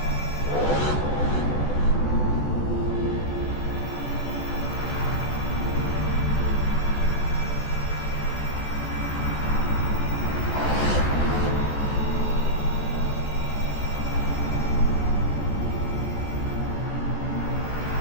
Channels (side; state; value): right; late; 14 ms